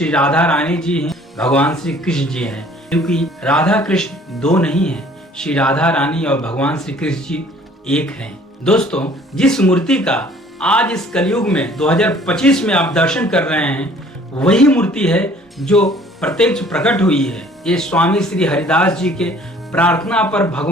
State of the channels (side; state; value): both; normal; correlation 0.54